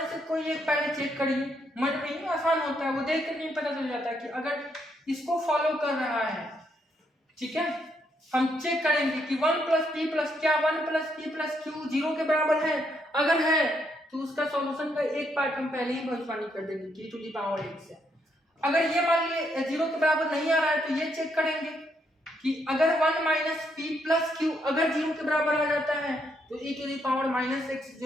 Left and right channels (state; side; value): normal; both; correlation 0.75